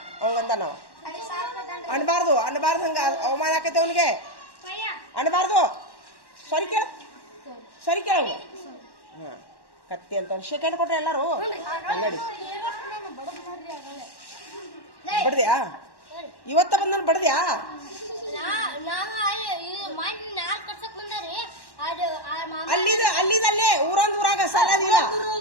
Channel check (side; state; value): right; late; 1.1 ms